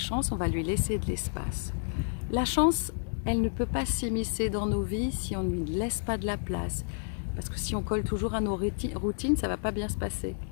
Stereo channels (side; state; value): right; silent; digital silence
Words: on va lui laisser de l'espace. La chance, elle ne peut pas s'immiscer dans nos vies si on ne lui laisse pas de la place. Parce que si on colle toujours à nos routines, ça ne va pas bien se passer.